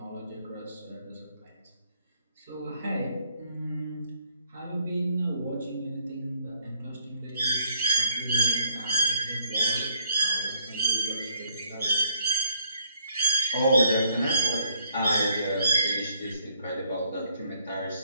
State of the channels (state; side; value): inverted; both; correlation -0.69